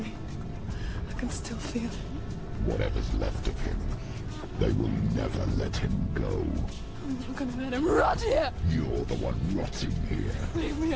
I can still feel it. Whatever's left of him, they will never let him go. I'm not gonna let him rot here. You're the one rotting here. Leave me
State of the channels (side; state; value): both; identical; correlation 1.00